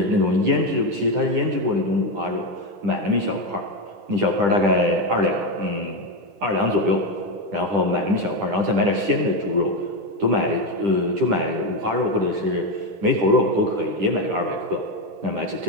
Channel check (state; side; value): late; left; 10 ms